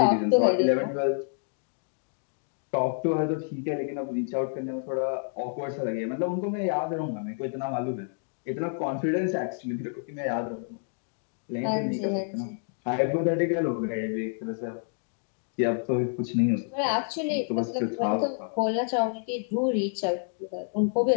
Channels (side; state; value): right; silent; digital silence